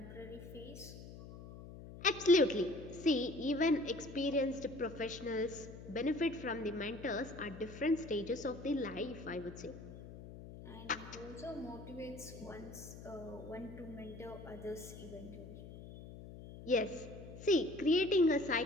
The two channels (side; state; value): left; noise; hum, 14 dB below the sound